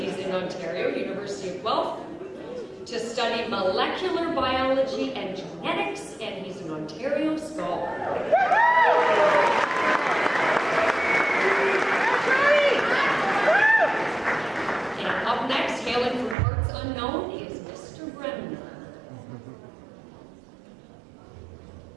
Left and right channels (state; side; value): drops out; left; at 16.4 s